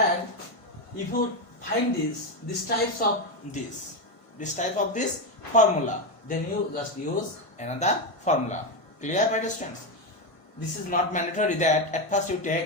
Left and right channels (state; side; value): late; right; 1.5 ms